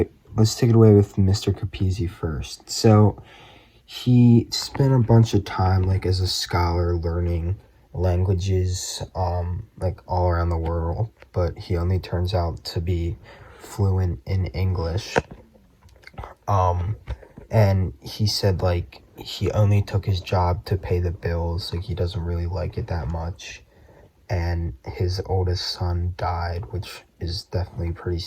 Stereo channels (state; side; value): identical; both; correlation 1.00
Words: Let's take it away with Mr. Capizzi first. So he spent a bunch of time like as a scholar learning languages like all around the world, but he only turns out to be fluent in English. Um, and he said like he only took his job to pay the bills, like he doesn't really like it that much. And his oldest son died, which is definitely pretty